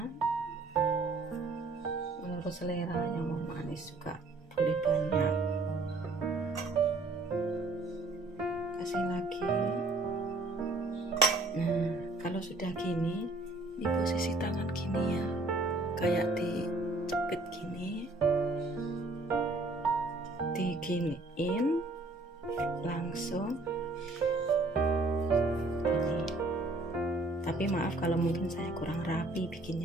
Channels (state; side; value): quieter; left; 3.0 dB